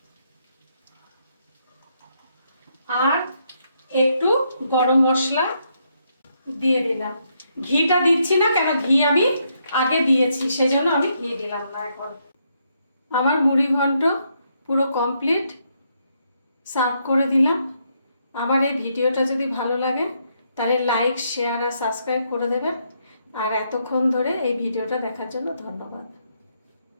আর একটু গরম মশলা দিয়ে দিলাম। ঘিটা দিচ্ছি না, কেন ঘি আমি আগে দিয়েছি, সেজন্য আমি ঘি দিলাম না এখন। আমার মুড়ি ঘন্ট পুরো কমপ্লিট, সার্ভ করে দিলাম। আমার এই ভিডিওটা যদি ভালো লাগে তাহলে লাইক, শেয়ার আর সাবস্ক্রাইব করে দেবেন। আর এতক্ষণ ধরে এই ভিডিওটা দেখার জন্য ধন্যবাদ।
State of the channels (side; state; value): both; inverted; correlation -0.76